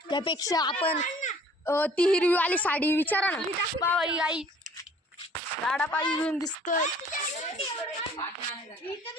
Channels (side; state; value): both; normal; correlation 0.54